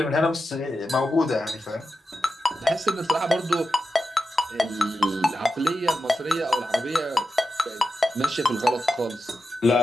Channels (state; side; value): normal; both; correlation 0.90